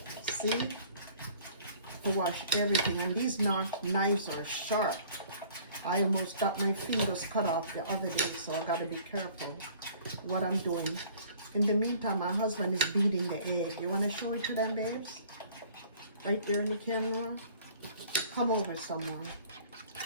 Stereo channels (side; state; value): both; inverted; correlation -0.52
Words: See? To wash everything, and these knives are sharp. I almost got my fingers cut off the other day, so I gotta be careful what I'm doing. In the meantime, my husband is beating the egg. You want to show it to them, babes? Right there in the camera. Come over, someone.